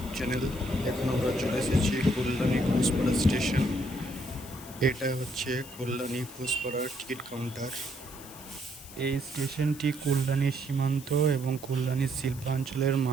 channel. এখন আমরা চলে এসেছি কল্যাণী ঘোষপাড়া স্টেশন। এটা হচ্ছে কল্যাণী ঘোষপাড়ার টিকিট কাউন্টার। এই স্টেশনটি কল্যাণী সীমান্ত এবং কল্যাণী শিল্পাঞ্চলের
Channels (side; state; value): left; noise; hiss, 17 dB below the sound